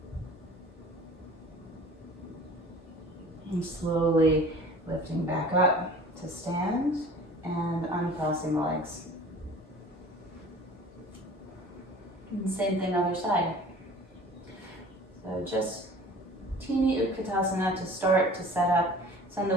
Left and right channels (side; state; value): both; normal; correlation 0.45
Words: And slowly lifting back up to stand and uncrossing the legs. And same thing other side. So just teeny Utkatasana to start to set up. Send the